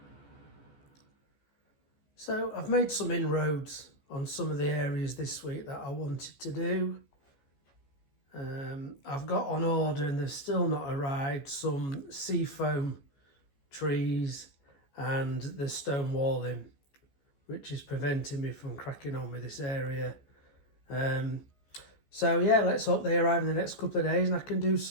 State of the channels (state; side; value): late; right; 14 ms